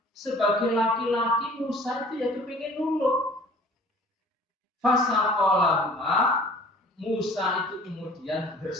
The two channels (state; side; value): normal; both; correlation 0.49